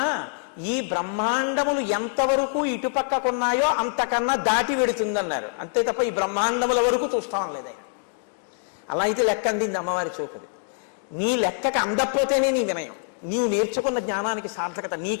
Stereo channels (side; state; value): right; silent; digital silence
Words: ఈ బ్రహ్మాండములు ఎంతవరకు ఇటుపక్కకున్నాయో అంతకన్నా దాటి వెడుతుందన్నారు. అంతే తప్ప ఈ బ్రహ్మాండముల వరకు చూస్తాం లేదు ఆయన. అలా అయితే లెక్క అందింది అమ్మవారి చూపుది. నీ లెక్కకి అందకపోతేనే నీ వినయం, నీవు నేర్చుకున్న జ్ఞానానికి సార్థకత.